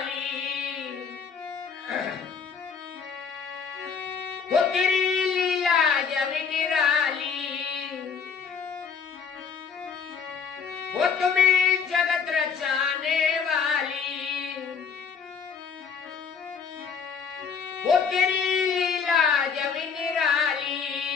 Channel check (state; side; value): quieter; right; 6.2 dB